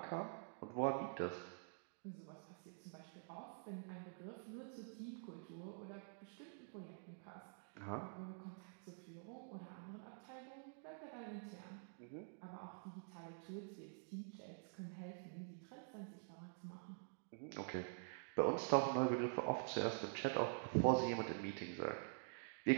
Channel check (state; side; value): silent; left; digital silence